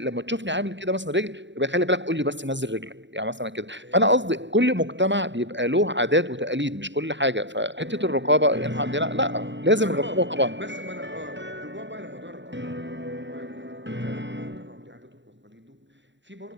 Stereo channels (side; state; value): left; late; 0.53 ms